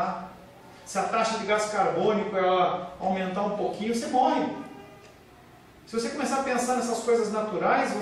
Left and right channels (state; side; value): identical; both; correlation 1.00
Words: Se a taxa de gás carbônico ela aumentar um pouquinho, você morre. Se você começar a pensar nessas coisas naturais,